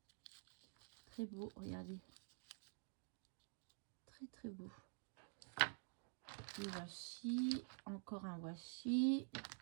Très beau, regardez. Très très beau. Des washi. Encore un washi.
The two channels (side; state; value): left; quieter; 39.2 dB